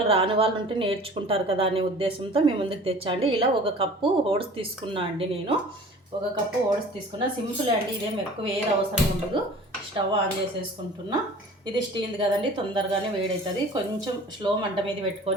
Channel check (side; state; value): both; normal; correlation 0.44